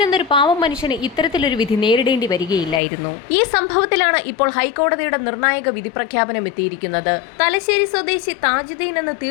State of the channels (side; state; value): right; drops out; at 2.8 s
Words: എന്നൊരു പാവം മനുഷ്യന് ഇത്തരത്തിലൊരു വിധി നേരിടേണ്ടി വരികയില്ലായിരുന്നു. ഈ സംഭവത്തിലാണ് ഇപ്പോൾ ഹൈക്കോടതിയുടെ നിർണായക വിധി പ്രഖ്യാപനം എത്തിയിരിക്കുന്നത്. തലശ്ശേരി സ്വദേശി താജുദ്ദീൻ എന്ന